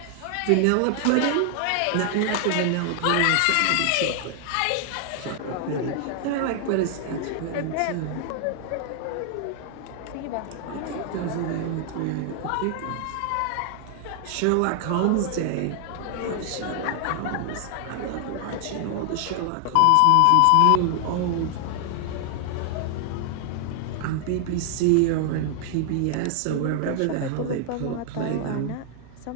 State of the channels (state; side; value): different; both; correlation 0.00